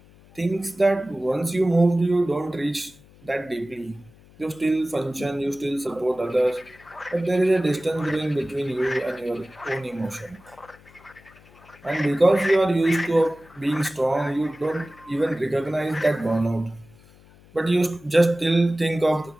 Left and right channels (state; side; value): noise; left; hum, 26 dB below the sound